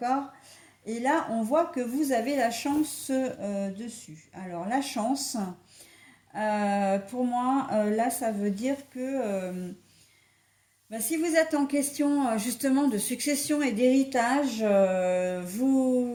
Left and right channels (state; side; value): identical; both; correlation 1.00